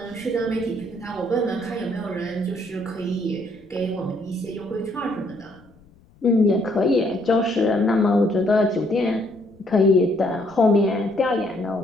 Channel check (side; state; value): left; noise; rumble, 28 dB below the sound